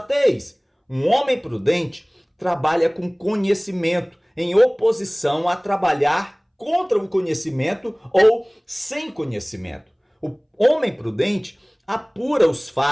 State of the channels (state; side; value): identical; both; correlation 1.00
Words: Um homem prudente trabalha com conhecimento, em oposição a trabalhar contra o conhecimento ou sem conhecimento. O homem prudente apura os